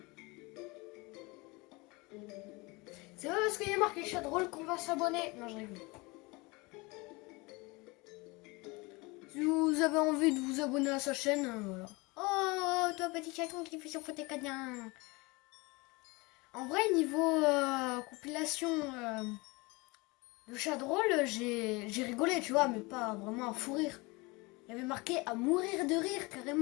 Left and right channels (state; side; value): quieter; right; 25.3 dB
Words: C'est pas parce qu'il y a marqué chat drôle qu'on va s'abonner. Non, je rigole. Si vous avez envie de vous abonner à sa chaîne, voilà. Oh, toi, petit chaton qui fait son fauteuil canien. En vrai, niveau compilation de chat drôle, j'ai rigolé, tu vois, mais pas vraiment à fou rire. Il y avait marqué à mourir de rire,